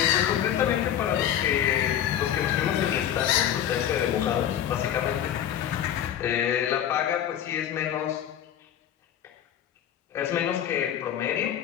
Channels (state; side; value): quieter; right; 10.4 dB